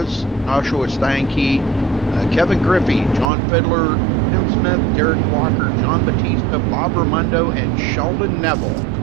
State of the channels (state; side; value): drops out; left; at 3.3 s